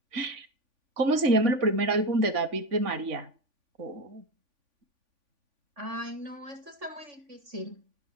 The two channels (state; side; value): late; left; 3.5 ms